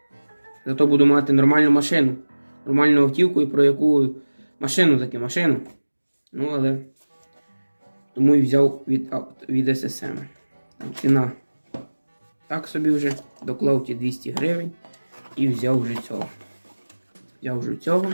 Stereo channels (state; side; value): inverted; both; correlation -1.00